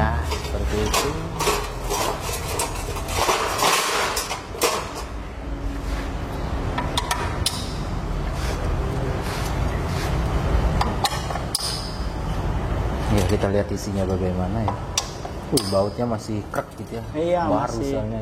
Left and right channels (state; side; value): identical; both; correlation 1.00